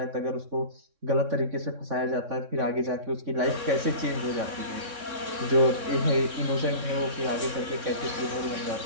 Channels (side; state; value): left; late; 3.6 ms